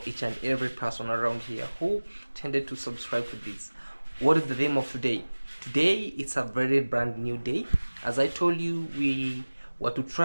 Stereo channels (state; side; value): inverted; both; correlation -1.00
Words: each and every person around here who tended to subscribe to this. What is the theme of today? Today it's a very brand new day. As I told you, we were to